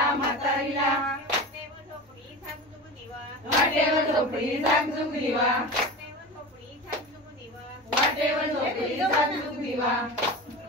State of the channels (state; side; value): normal; both; correlation 0.29